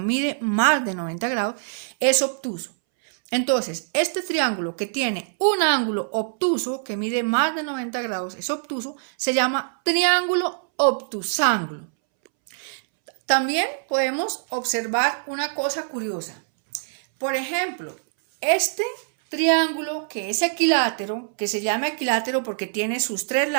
más de 90 grados, es obtuso. Entonces, este triángulo que tiene un ángulo obtuso, que mide más de 90 grados, es obtuso, se llama triángulo obtusángulo. También podemos observar una cosa curiosa. Por ejemplo, este triángulo que es equilátero, que se llama equilátero porque tiene sus tres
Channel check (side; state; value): left; silent; 63 dB below the other